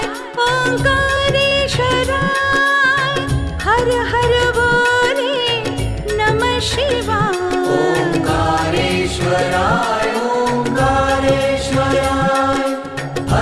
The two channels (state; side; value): identical; both; correlation 1.00